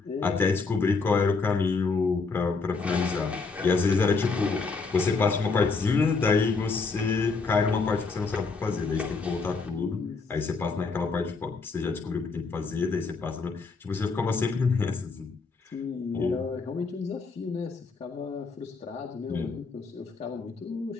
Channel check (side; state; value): right; quieter; 4.4 dB